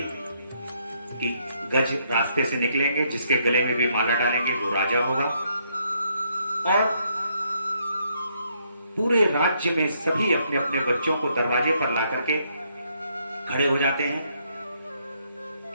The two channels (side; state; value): both; inverted; correlation -0.72